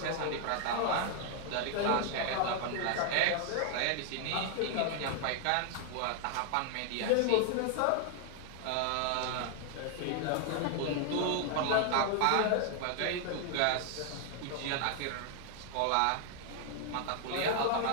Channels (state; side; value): different; both; correlation 0.00